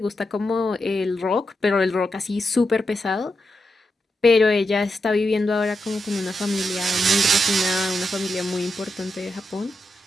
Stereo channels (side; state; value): both; normal; correlation 0.86